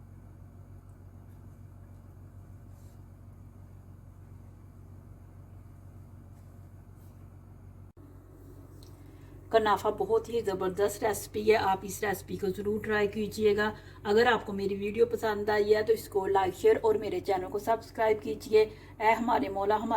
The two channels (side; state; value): both; identical; correlation 1.00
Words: कनाफा बहुत ही ज़बरदस्त रेसिपी है, आप इस रेसिपी को ज़रूर ट्राई कीजिएगा। अगर आपको मेरी वीडियो पसंद आई है तो इसको लाइक शेयर और मेरे चैनल को सब्सक्राइब कीजिए। ऐ हमारे मौला